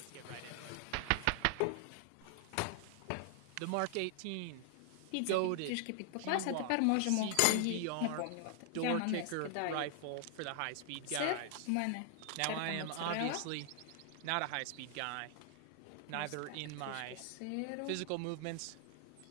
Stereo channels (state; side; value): different; both; correlation 0.00